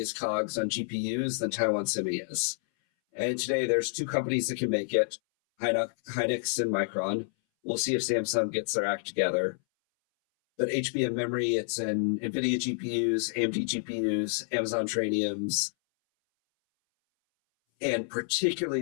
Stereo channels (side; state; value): right; silent; 59 dB below the other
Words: COGS on GPUs than Taiwan Semi is. And today there's 2 companies that can make it, Hynix and Micron. We'll see if Samsung gets their act together. But HBM memory, it's in NVIDIA GPUs, AMD GPUs, Amazon Trainiums, and particularly